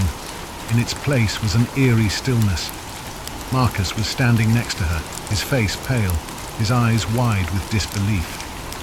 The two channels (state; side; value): identical; both; correlation 1.00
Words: In its place was an eerie stillness. Marcus was standing next to her, his face pale, his eyes wide with disbelief.